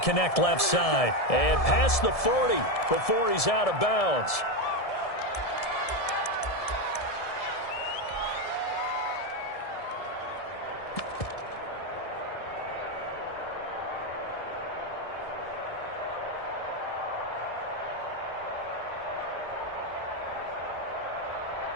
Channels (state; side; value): late; right; 1.7 ms